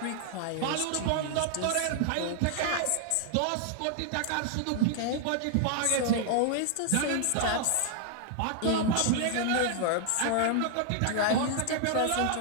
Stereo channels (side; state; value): both; different; correlation 0.00